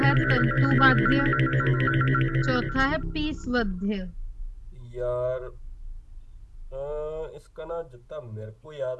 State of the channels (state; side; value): identical; both; correlation 1.00